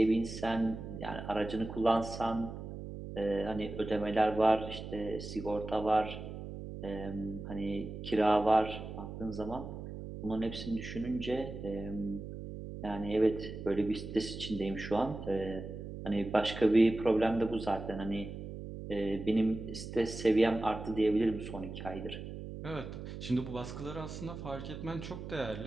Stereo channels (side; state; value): right; noise; hum, 9 dB below the sound